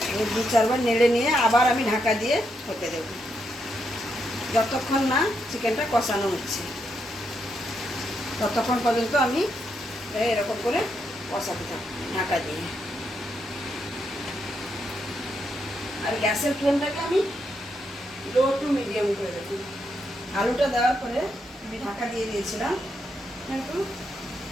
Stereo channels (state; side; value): normal; both; correlation 0.80